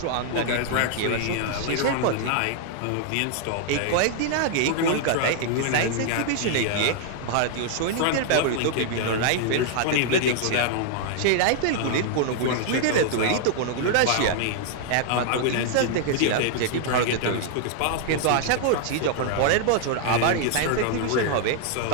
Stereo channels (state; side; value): different; both; correlation -0.01